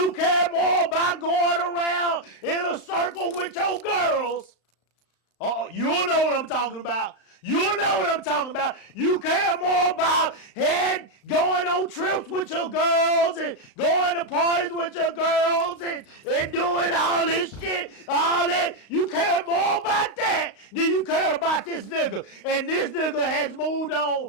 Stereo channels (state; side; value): late; right; 35 ms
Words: care more about going around in a circle with your girls. You know what I'm talking about. You care more about going on trips with your girls and going to parties with your girls and doing all this shit, all that. You care more about that than you care about this nigga. And this nigga has moved on